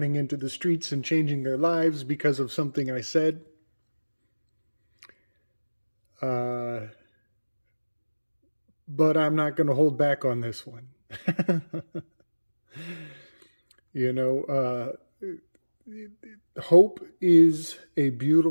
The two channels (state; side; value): inverted; both; correlation -1.00